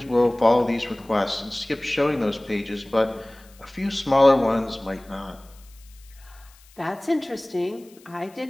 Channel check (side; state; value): left; noise; hiss, 27 dB below the sound